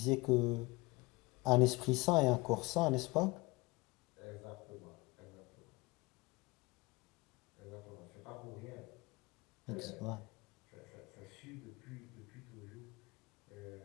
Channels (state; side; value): quieter; right; 23.7 dB